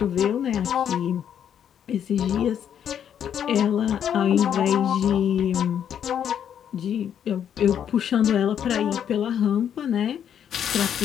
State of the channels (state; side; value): quieter; right; 9.0 dB